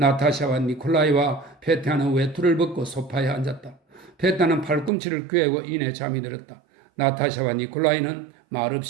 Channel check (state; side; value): drops out; left; at 4.9 s